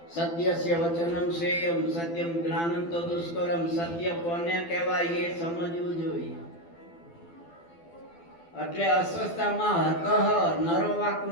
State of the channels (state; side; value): late; right; 12 ms